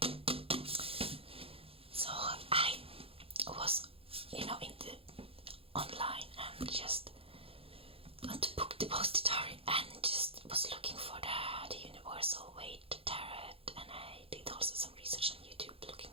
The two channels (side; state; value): left; late; 0.27 ms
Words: In the online and just went to book depository and just was looking for the Universal Waite tarot, and I did also some research on YouTube looking